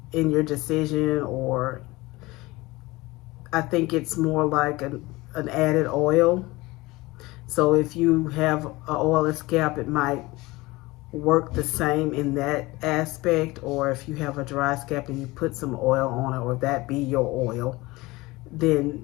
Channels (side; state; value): right; quieter; 21.2 dB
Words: in your decision, or I think it's more like an added oil. So if you have an oily scalp, it might work the same in that aspect. Or if you have a dry scalp and you put some oil on it, or that be your oil, then